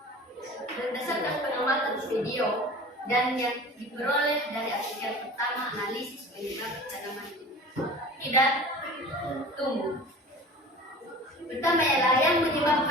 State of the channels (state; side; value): normal; both; correlation 0.40